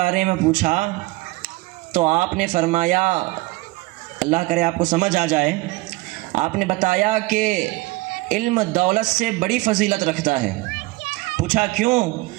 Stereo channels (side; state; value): left; quieter; 21.8 dB